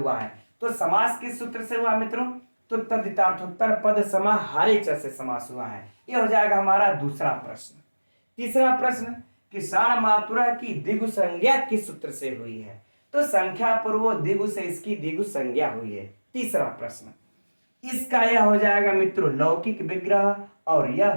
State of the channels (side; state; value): both; inverted; correlation -1.00